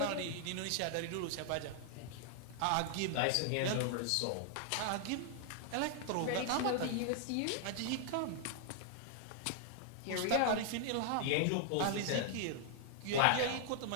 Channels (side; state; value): both; different; correlation -0.01